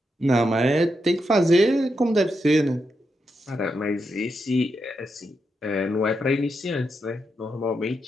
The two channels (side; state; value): both; normal; correlation 0.84